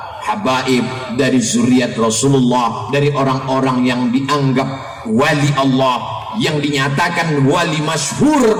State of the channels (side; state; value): both; identical; correlation 1.00